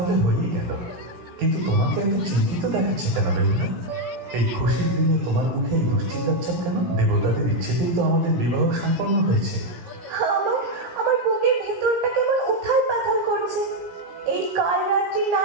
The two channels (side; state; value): left; late; 17 ms